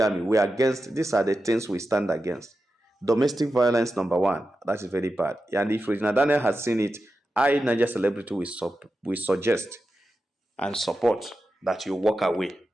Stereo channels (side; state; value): both; normal; correlation 0.91